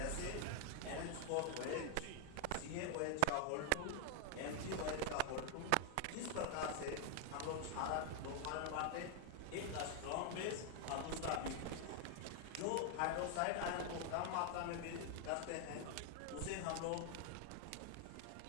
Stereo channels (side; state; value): both; different; correlation 0.01